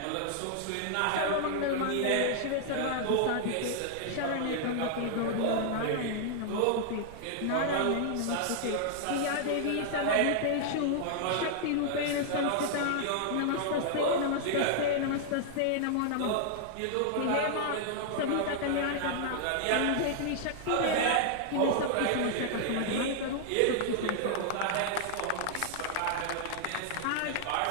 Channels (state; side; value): different; both; correlation -0.01